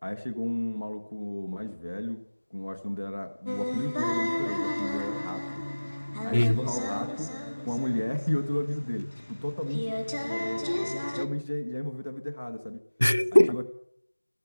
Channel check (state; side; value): inverted; both; correlation -1.00